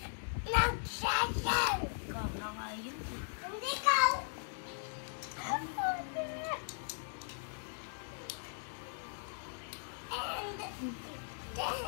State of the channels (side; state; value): right; silent; digital silence